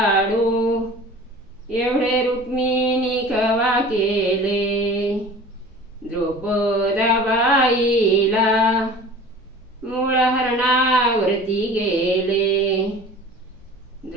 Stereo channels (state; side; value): normal; both; correlation 0.42